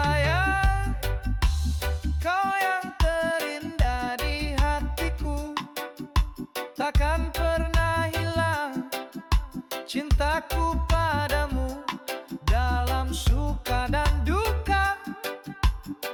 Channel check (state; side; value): identical; both; correlation 1.00